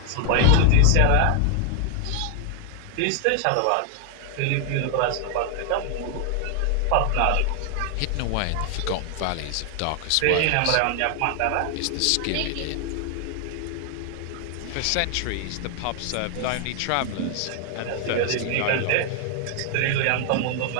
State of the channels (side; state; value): both; different; correlation 0.00